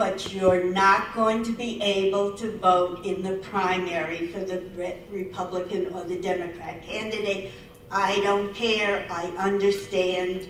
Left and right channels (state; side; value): identical; both; correlation 1.00